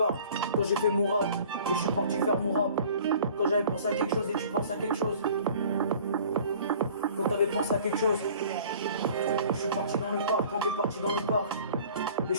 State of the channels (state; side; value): inverted; both; correlation -0.49